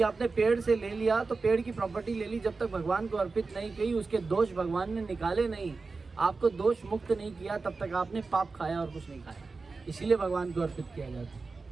आपने पेड़ से ले लिया तो पेड़ की प्रॉपर्टी ले ली, जब तक भगवान को अर्पित नहीं की, उसके दोष भगवान ने निकाले नहीं, आपको दोष मुक्त नहीं किया, तब तक आपने पाप खाया और कुछ नहीं खाया। इसीलिए भगवान को अर्पित किया जाता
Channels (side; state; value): left; quieter; 4.1 dB